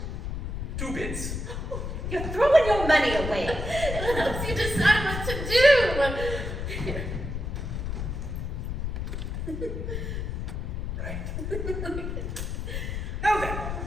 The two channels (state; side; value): noise; left; rumble, 4 dB below the sound